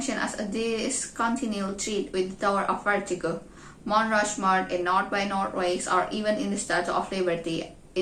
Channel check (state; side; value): identical; both; correlation 1.00